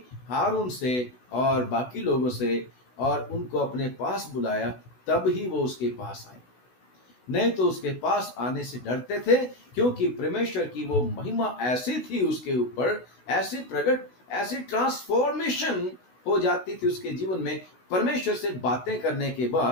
हारून से और बाकी लोगों से, और उनको अपने पास बुलाया, तब ही वो उसके पास आए, नहीं तो उसके पास आने से डरते थे, क्योंकि परमेश्वर की वो महिमा ऐसी थी उसके ऊपर, ऐसी प्रकट, ऐसी ट्रांसफॉर्मेशन हो जाती थी उसके जीवन में परमेश्वर से बातें करने के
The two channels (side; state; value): right; late; 16 ms